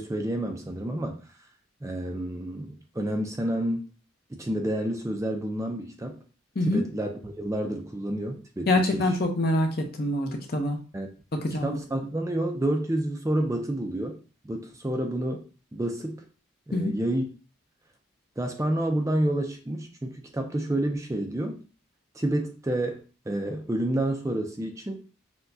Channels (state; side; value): normal; both; correlation 0.79